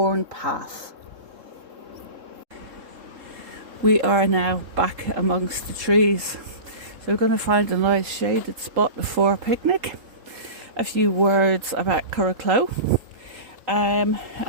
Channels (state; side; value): late; left; 3.8 ms